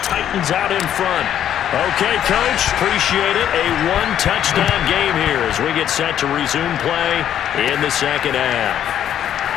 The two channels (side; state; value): right; quieter; 10.3 dB